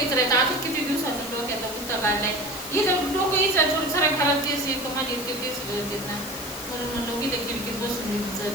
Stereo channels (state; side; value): noise; left; hiss, 11 dB below the sound